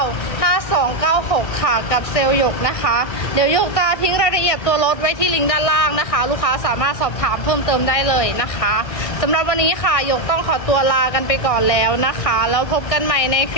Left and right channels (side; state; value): right; late; 1.6 ms